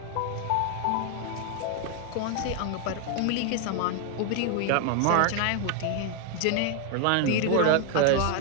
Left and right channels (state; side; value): different; both; correlation 0.00